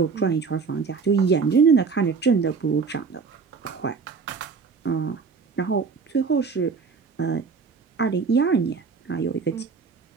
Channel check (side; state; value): left; quieter; 5.2 dB